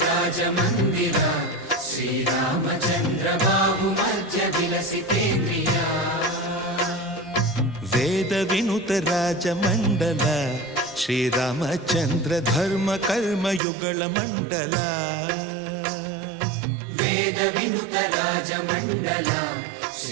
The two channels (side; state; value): left; drops out; at 13.6 s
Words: ರಾಜ ಮಂದಿರ ಶ್ರೀರಾಮಚಂದ್ರ ಬಾಹು ಮಧ್ಯ ವಿಲಸಿತೇಂದ್ರಿಯ ವೇದ ವಿನುತ ರಾಜ ಮಂಡಲ ಶ್ರೀರಾಮಚಂದ್ರ ಧರ್ಮ ಕರ್ಮ ಯುಗಳ ಮಂಡಲ ವೇದ ವಿನುತ ರಾಜ ಮಂಡಲ